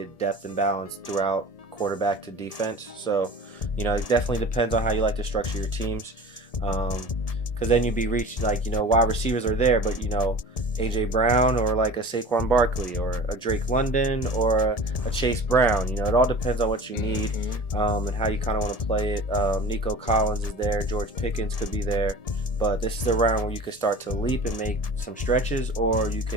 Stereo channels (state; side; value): late; right; 1.7 ms